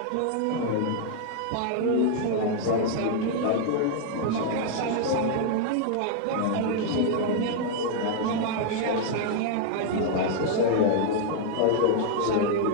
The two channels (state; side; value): different; both; correlation -0.01